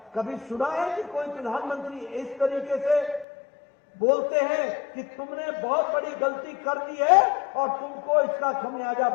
कभी सुना है कि कोई प्रधानमंत्री इस तरीके से बोलते हैं कि तुमने बहुत बड़ी गलती कर दी है और तुमको इसका खमियाजा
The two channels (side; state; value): right; drops out; at 3.2 s